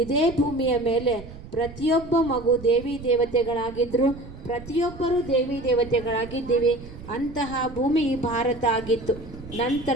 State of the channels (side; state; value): right; noise; rumble, 15 dB below the sound